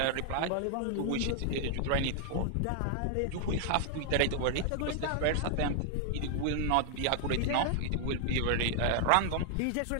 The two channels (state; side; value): different; both; correlation 0.00